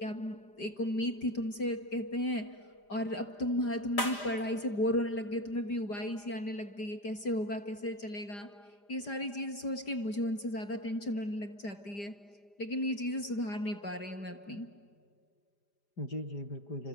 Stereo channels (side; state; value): right; late; 5.0 ms